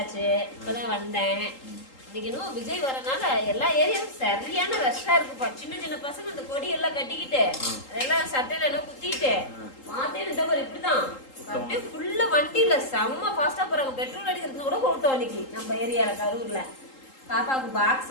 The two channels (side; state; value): right; late; 3.8 ms